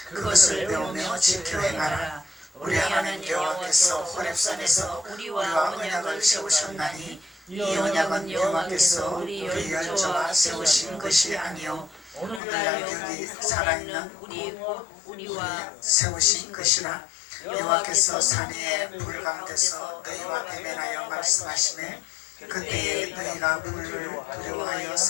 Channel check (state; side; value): drops out; right; at 12.4 s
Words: 그것을 배우며 지켜 행하라. 우리 하나님 여호와께서 호렙산에서 우리와 언약을 세우셨나니 이 언약은 여호와께서 우리 열조와 세우신 것이 아니요 오늘날 여기 살아있는 우리와 세우신 것이라. 여호와께서 산 위에 불 가운데서 너희와 대면하여 말씀하시매 그때에 너희가 불을 두려워하여